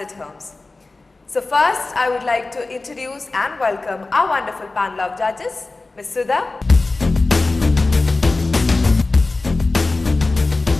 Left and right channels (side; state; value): right; quieter; 3.4 dB